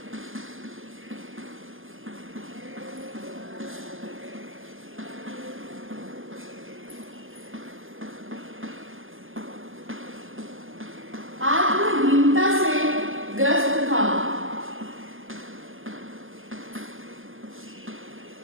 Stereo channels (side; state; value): left; late; 0.59 ms